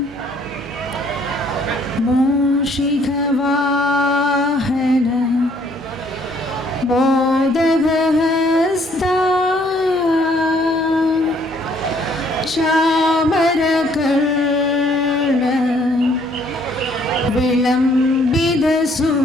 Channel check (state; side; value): normal; both; correlation 0.63